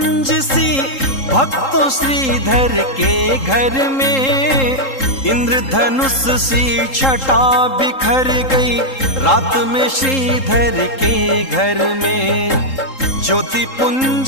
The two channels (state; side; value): late; right; 3.8 ms